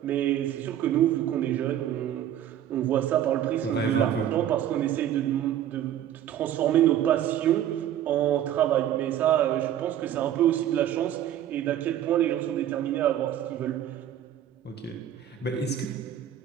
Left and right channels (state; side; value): quieter; left; 10.9 dB